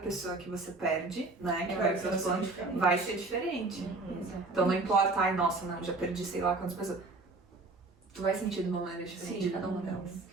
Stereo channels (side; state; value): left; quieter; 3.4 dB